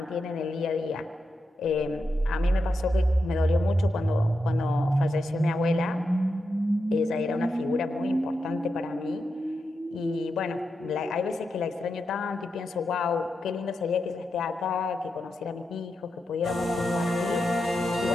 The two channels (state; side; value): normal; both; correlation 0.87